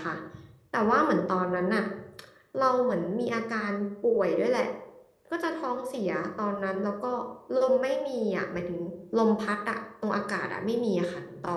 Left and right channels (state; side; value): identical; both; correlation 1.00